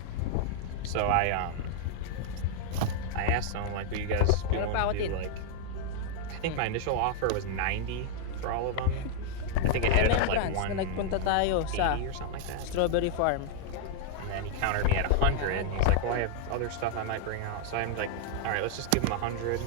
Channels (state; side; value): different; both; correlation 0.00